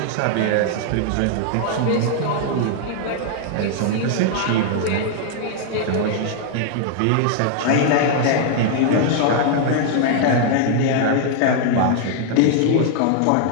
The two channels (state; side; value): different; both; correlation 0.00